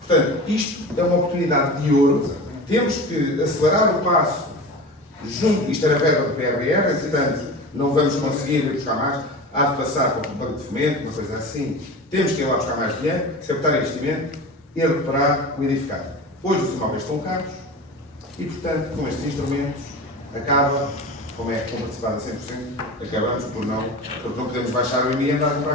Portanto, isto é uma oportunidade de ouro. Temos que acelerar o passo junto. Isto era verba do PRR, portanto, não vamos conseguir ir buscar mais. Há de passar para o banco de fomento, uma coisa assim. Temos que ir lá buscar mais dinheiro, captar investimento e recuperar o edificado. Hoje os imóveis estão caros e, portanto, com estes instrumentos, acaba, como é comparticipado a 100%, acabamos porque não podemos baixar o IMI e andar a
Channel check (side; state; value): both; normal; correlation 0.32